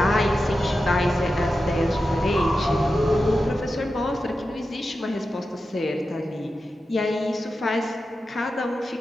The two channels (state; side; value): normal; both; correlation 0.91